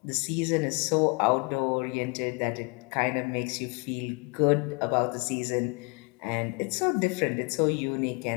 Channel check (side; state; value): right; quieter; 31.5 dB